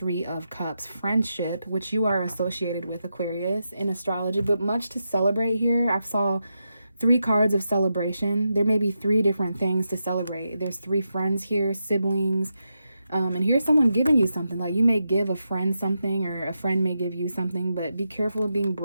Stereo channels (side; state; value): both; inverted; correlation -0.86